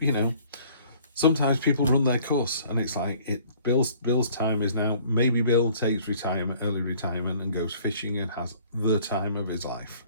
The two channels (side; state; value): both; inverted; correlation -0.55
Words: know, sometimes people run their course, and it's like Bill's time is now. Maybe Bill takes early retirement, and goes fishing and has the time of his life.